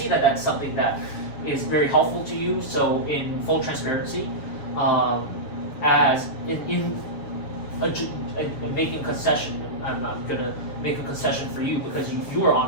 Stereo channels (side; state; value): right; late; 7.0 ms